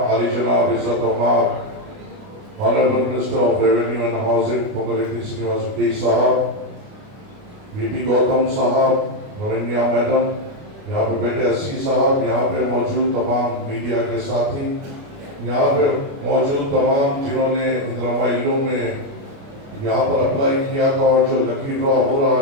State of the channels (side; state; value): left; late; 29 ms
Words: عالی جناب عزت عمر Honorable Minister of Revenue and Housing Ponguleti Srinivas Reddy صاحب، VP گوتم صاحب، نورینیا میڈم، یہاں پہ بیٹے SC صاحب، یہاں پہ موجود تمام میڈیا کے ساتھی، یہاں پہ موجود تمام جنہوں نے اندرما انڈلو میں یہاں پر اپلائی کیا تھا اور جو لکی ڈرا ہو رہا